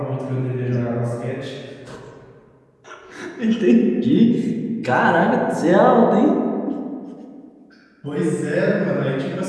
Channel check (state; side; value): identical; both; correlation 1.00